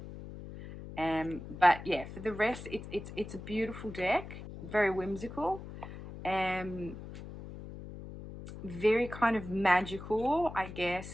But yeah, for the rest, it's a beautiful deck, very whimsical, very kind of magical, I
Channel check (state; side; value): noise; left; hum, 12 dB below the sound